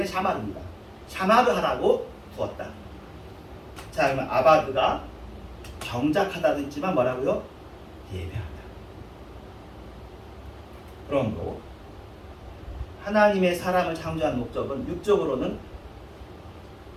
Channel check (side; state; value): both; identical; correlation 1.00